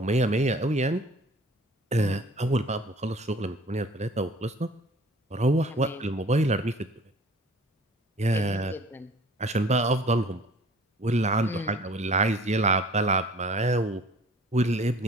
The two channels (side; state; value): both; normal; correlation 0.50